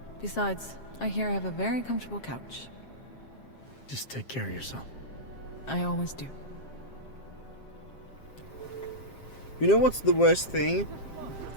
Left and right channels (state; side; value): late; right; 7.5 ms